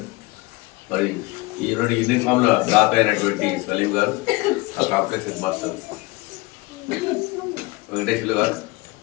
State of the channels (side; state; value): right; quieter; 22.8 dB